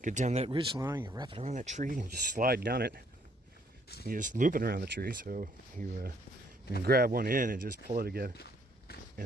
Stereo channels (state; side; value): normal; both; correlation 0.67